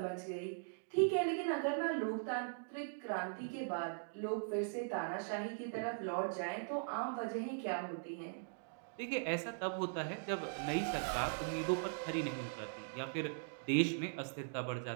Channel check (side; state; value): left; silent; digital silence